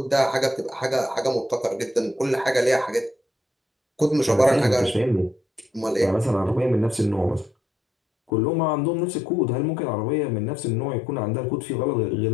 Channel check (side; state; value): right; drops out; at 8.3 s